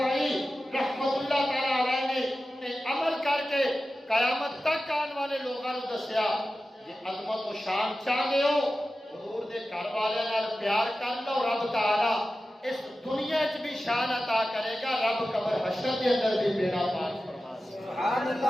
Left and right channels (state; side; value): normal; both; correlation 0.94